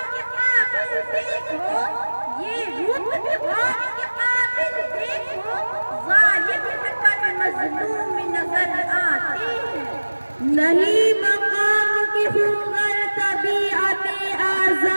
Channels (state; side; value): inverted; both; correlation -1.00